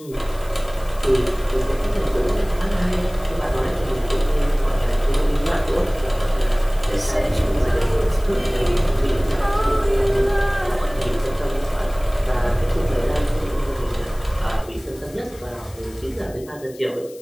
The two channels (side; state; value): left; noise; hiss, 22 dB below the sound